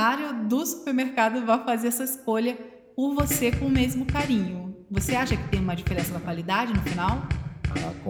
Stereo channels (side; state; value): both; identical; correlation 1.00